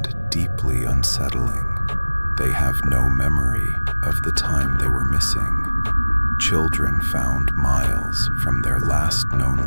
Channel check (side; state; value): both; inverted; correlation -1.00